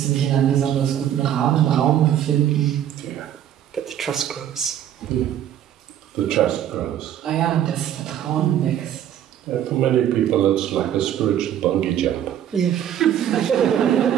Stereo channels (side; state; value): left; quieter; 10.6 dB